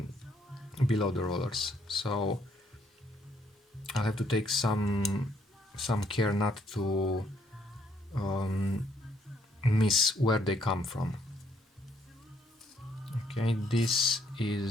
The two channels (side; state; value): both; normal; correlation 0.70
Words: below the rollers. So I'll have to take some care not to miss where they come from. Okay, this